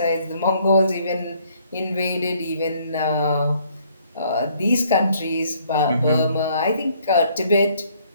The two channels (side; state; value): both; inverted; correlation -0.65